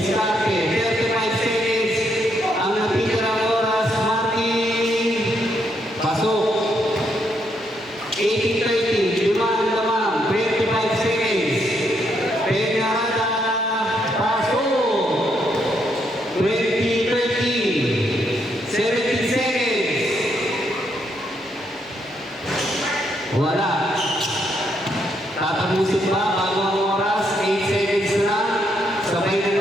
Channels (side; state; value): both; normal; correlation 0.76